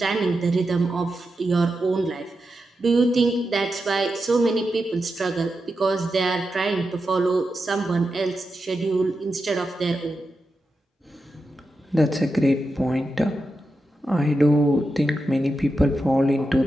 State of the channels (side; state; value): both; normal; correlation 0.89